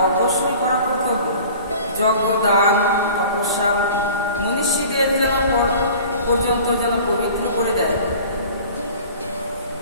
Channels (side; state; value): both; inverted; correlation -0.44